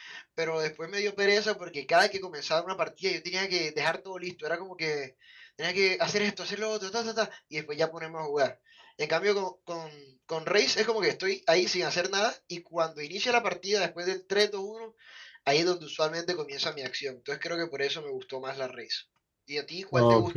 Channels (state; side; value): identical; both; correlation 1.00